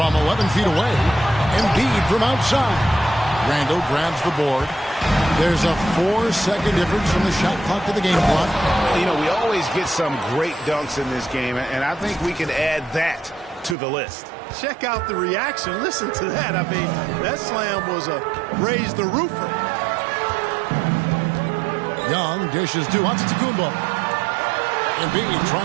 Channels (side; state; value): left; drops out; at 13.8 s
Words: 11 feet away. Embiid from outside. Randle grabs the board. There's a 4-second difference from the shot clock to the game clock. You know, we always get some great dunks in this game, and I think we can add that to the list. Check out the reaction. Listen to that. I mean, that slam was a raise the roofer. Young dishes to Antetokounmpo. Embiid